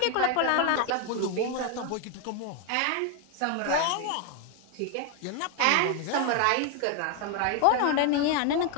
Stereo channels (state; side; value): different; both; correlation 0.01